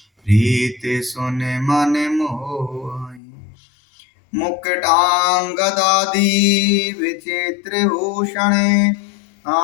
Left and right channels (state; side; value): drops out; right; at 3.2 s